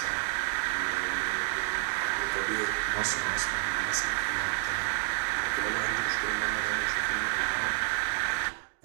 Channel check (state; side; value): silent; left; digital silence